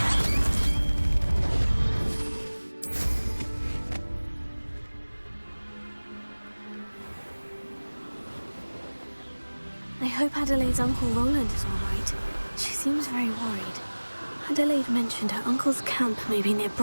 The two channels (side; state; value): both; inverted; correlation -1.00